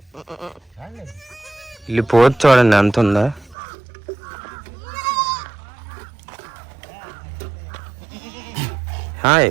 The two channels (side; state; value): left; drops out; at 3.6 s